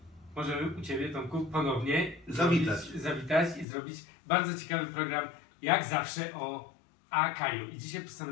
możemy u Ciebie, Tomku, ponownie zawitać i zrobić bardzo ciekawy program, jak zawsze, o Akaju. I dzisiaj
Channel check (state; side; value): drops out; right; at 3.7 s